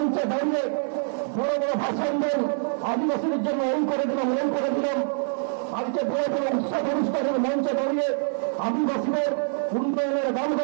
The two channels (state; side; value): silent; left; 62 dB below the other